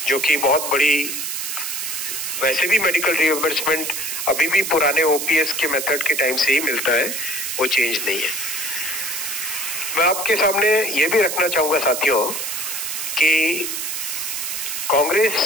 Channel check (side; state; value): right; noise; hiss, 3 dB below the sound